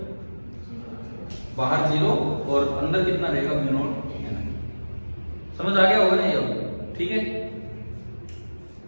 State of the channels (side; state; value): both; inverted; correlation -1.00